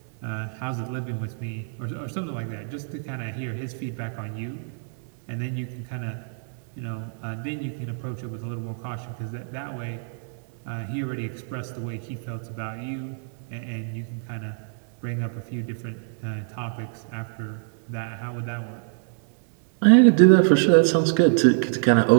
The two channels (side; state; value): left; silent; 61 dB below the other